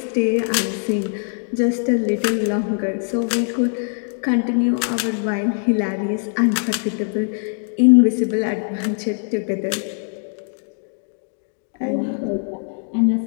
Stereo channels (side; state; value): right; silent; digital silence